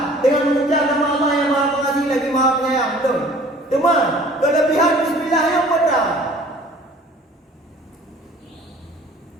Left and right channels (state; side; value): normal; both; correlation 0.50